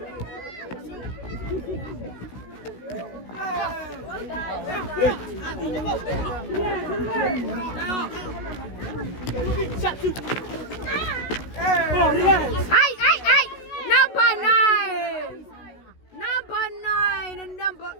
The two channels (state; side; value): late; right; 16 ms